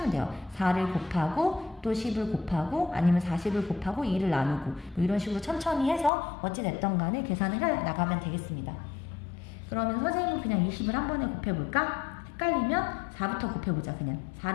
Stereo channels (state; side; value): drops out; right; at 6.1 s